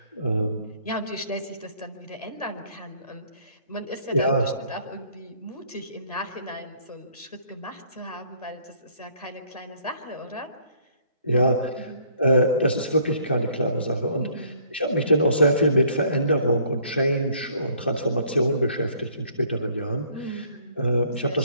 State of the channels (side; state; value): both; inverted; correlation -0.61